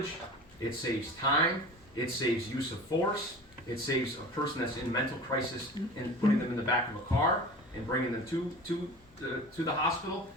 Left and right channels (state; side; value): normal; both; correlation 0.37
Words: it saves time, it saves use of force, it saves a person that's in mental crisis and putting them in the back of a car and bringing them to the hospital.